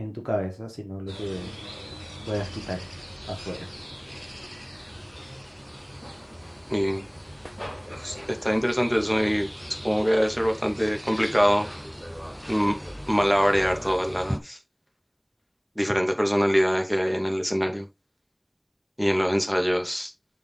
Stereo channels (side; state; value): both; identical; correlation 1.00